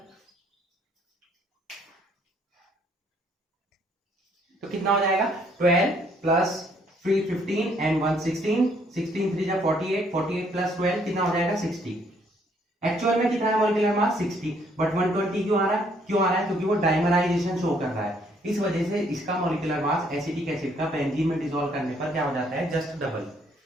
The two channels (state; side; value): normal; both; correlation 0.66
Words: तो कितना हो जाएगा? 12 प्लस 3 15 एंड 1 16, 16 3 जा 48, 48 प्लस 12 कितना हो जाएगा? 60। एक्चुअल में कितना है मॉलिक्यूलर मास? 60, बट 120 क्यों आ रहा है? क्योंकि वो डाइमराइजेशन शो कर रहा है, इस वजह से इसका मॉलिक्यूलर मास एसिटिक एसिड का बेंजीन में डिसॉल्व करने पर क्या हो जाता है? Just double.